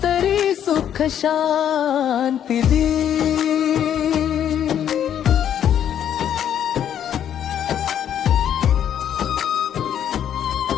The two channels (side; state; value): right; quieter; 9.7 dB